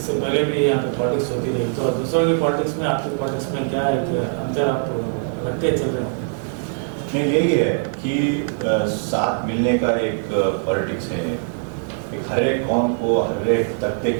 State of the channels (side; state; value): left; silent; digital silence